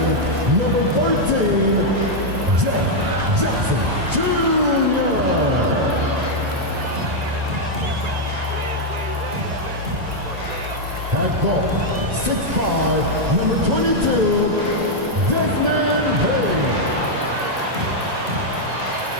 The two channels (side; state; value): left; late; 1.9 ms